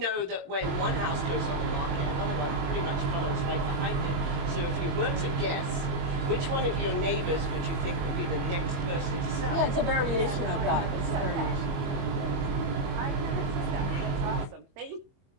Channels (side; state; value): left; late; 22 ms